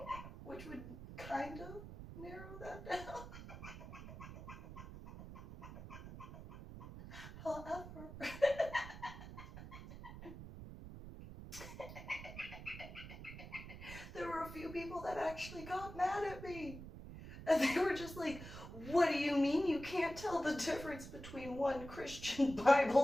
Which would kind of narrow that down. However, there were a few people that actually got mad at me. And they were just like, what do you mean you can't tell the difference between one Christian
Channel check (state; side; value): noise; right; rumble, 12 dB below the sound